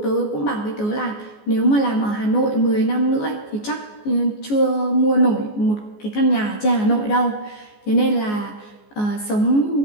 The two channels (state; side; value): late; right; 14 ms